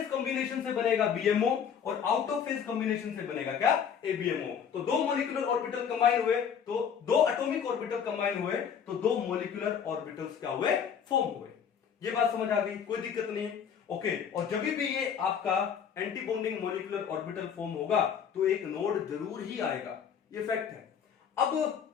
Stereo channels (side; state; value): right; quieter; 7.6 dB